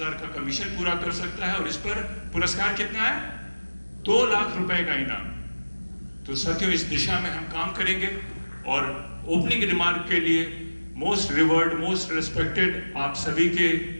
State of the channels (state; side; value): inverted; both; correlation -1.00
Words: का कमीशन पूरा कर सकता है और इस पर पुरस्कार कितना है? 2 लाख रुपए का इनाम। तो साथियों, इस दिशा में हम काम करेंगे और ओपनिंग रिमार्क के लिए मोस्ट रिवर्ड, मोस्ट रिस्पेक्टेड, आप सभी के